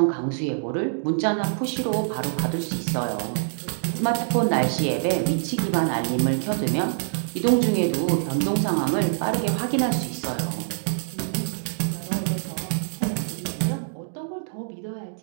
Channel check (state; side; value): silent; left; digital silence